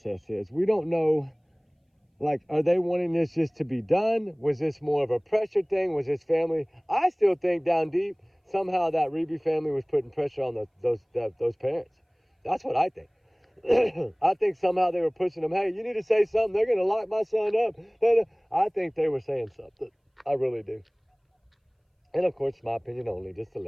is. We don't know, like, are they wanting this just to be done? Was this more of a pressure thing? Was this family? I still think down deep, somehow that Reeby family was putting pressure on those parents. That's what I think. I think somehow they were pushing them, hey, you need to say something. They're going to lock my son up. I think they were saying something. I really do. And, of course, my opinion only, just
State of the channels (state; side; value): identical; both; correlation 1.00